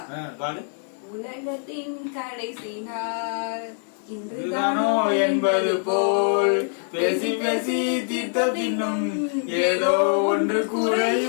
பாடு. உலகத்தின் கடைசி நாள் இன்றுதானோ என்பது போல் பேசி பேசி தீர்த்த பின்னும் ஏதோ ஒன்று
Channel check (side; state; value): right; silent; digital silence